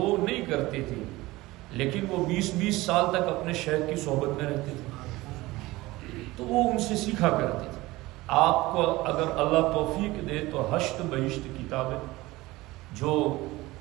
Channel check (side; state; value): left; quieter; 19.6 dB